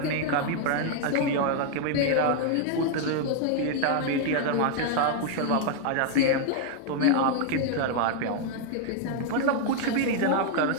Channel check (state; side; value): different; both; correlation 0.00